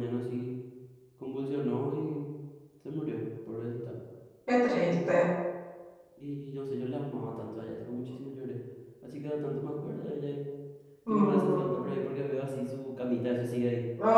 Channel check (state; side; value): identical; both; correlation 1.00